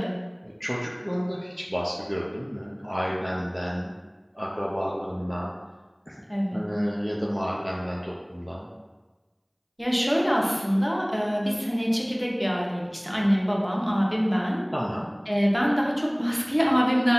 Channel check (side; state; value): both; identical; correlation 1.00